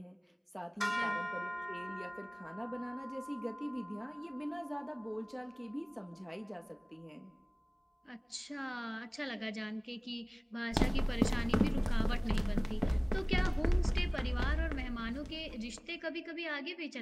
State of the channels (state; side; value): identical; both; correlation 1.00